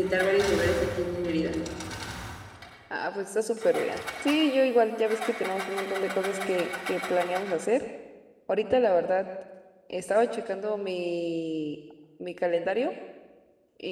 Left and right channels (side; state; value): both; identical; correlation 1.00